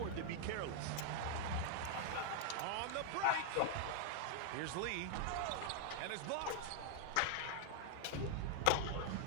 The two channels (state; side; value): different; both; correlation 0.00